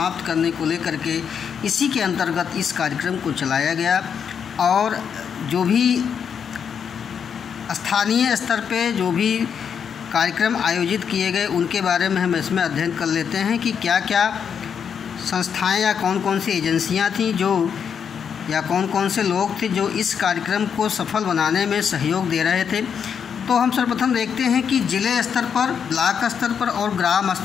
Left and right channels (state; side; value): quieter; right; 7.3 dB